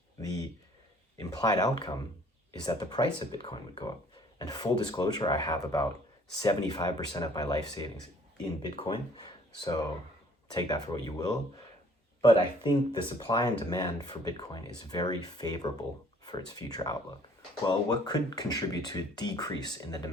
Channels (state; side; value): normal; both; correlation 0.57